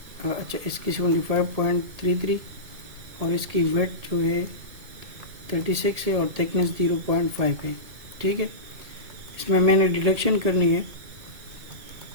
अच्छा इसकी 75.33 और इसकी वेट जो है 36 है और थिकनेस 0.5 है, ठीक है। इसमें मैंने डिडक्शन करनी है,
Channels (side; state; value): left; late; 2.2 ms